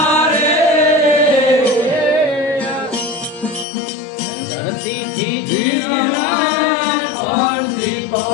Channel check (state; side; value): drops out; right; at 3.7 s